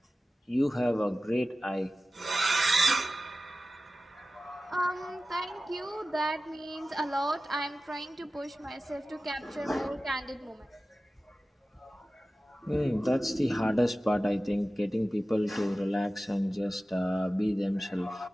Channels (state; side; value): normal; both; correlation 0.95